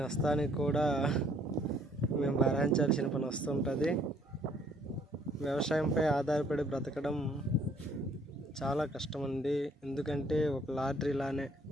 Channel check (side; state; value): both; normal; correlation 0.63